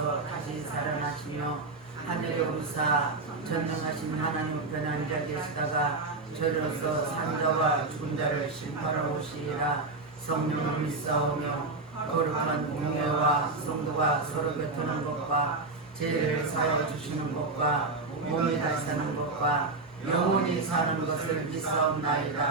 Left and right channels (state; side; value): quieter; left; 3.5 dB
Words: 다시 살아나시며 하늘에 오르사 전능하신 하나님 우편 앉아 계시다가 저로서 산자와 죽은 자를 심판하러 오시리라. 성령을 믿사오며 거룩한 공예와 성도가 서로 교통하는 것과 죄를 사하여 주시는 것과 몸이 다시 사는 것과 영원히 사는 것을